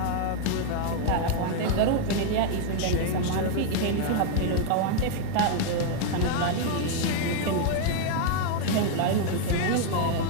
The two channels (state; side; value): different; both; correlation 0.00